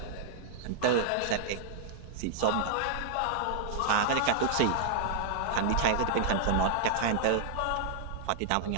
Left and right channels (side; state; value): both; different; correlation -0.01